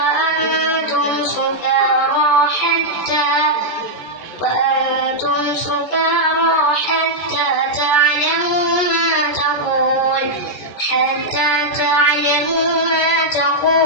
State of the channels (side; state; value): right; late; 14 ms